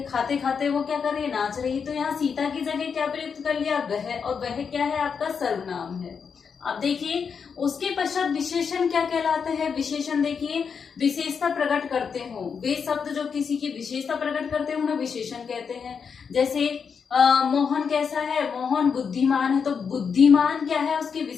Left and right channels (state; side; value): quieter; right; 6.2 dB